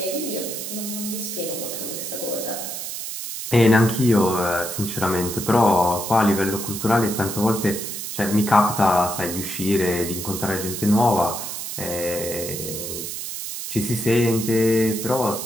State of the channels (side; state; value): right; noise; hiss, 6 dB below the sound